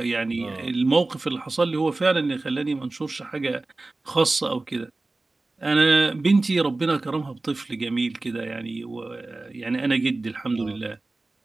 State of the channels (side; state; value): left; quieter; 3.1 dB